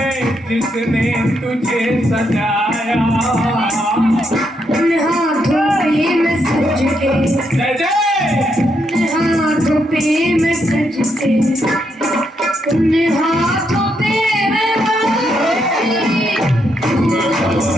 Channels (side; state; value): both; normal; correlation 0.78